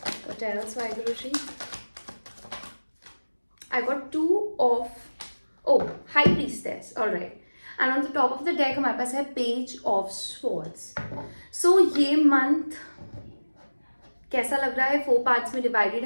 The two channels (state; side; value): inverted; both; correlation -1.00